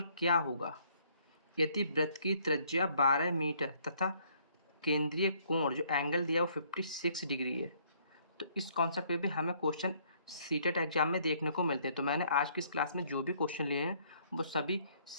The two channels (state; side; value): inverted; both; correlation -0.65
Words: क्या होगा यदि वृत्त की त्रिज्या 12 मीटर तथा केंद्रीय कोण जो एंगल दिया वो 56 डिग्री है। तो इस कॉन्सेप्ट पे भी हमें क्वेश्चन सीटेट एग्जाम में देखने को मिलते हैं। तो मैंने आज की इस क्लास में जो भी क्वेश्चन लिए हैं वो सभी